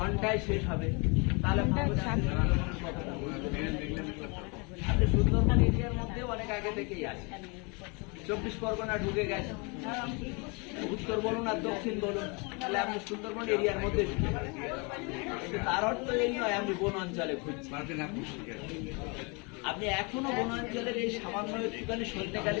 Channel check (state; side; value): quieter; right; 31.3 dB